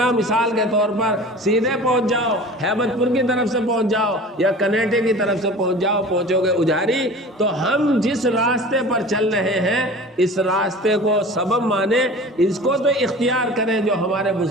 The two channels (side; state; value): both; normal; correlation 0.40